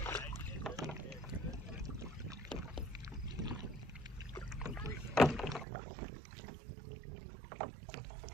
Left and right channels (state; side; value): drops out; left; at 5.7 s